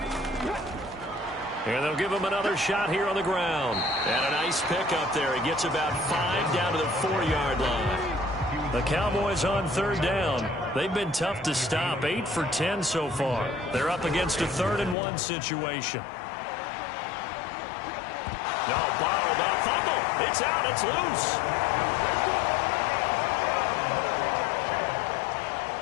And they'll give him another shot here on the ground. And a nice pickup there. He gets about 5 down to the 4-yard line. The Cowboys on 3rd down. They've been tough to stop. 8 for 10 so far. They're up against a 3rd and 1 situation. No, bottled up. Fumble. It's out. It's loose.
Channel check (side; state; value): right; drops out; at 15.0 s